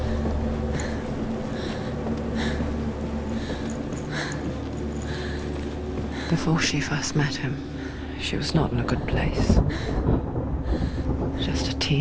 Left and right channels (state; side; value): identical; both; correlation 1.00